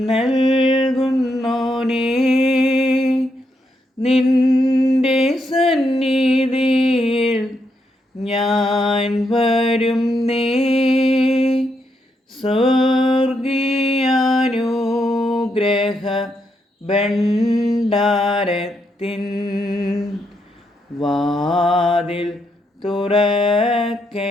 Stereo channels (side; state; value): both; normal; correlation 0.79